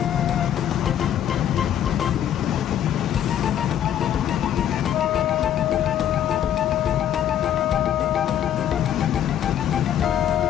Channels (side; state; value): right; quieter; 10.3 dB